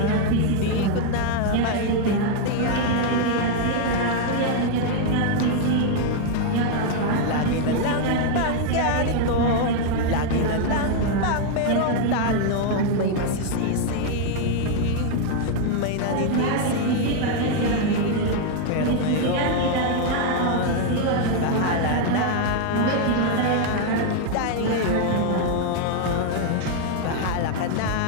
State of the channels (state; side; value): different; both; correlation 0.00